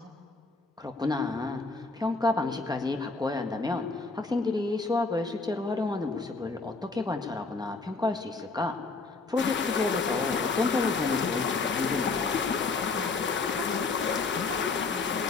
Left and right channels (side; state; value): right; quieter; 3.9 dB